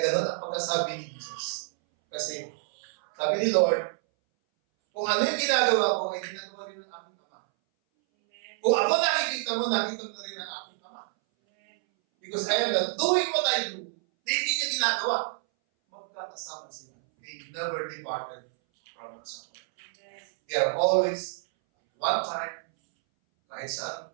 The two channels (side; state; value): left; silent; 59 dB below the other